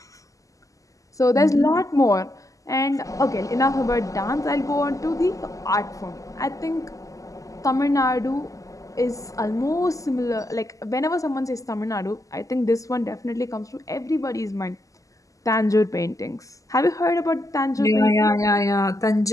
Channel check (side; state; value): right; late; 0.16 ms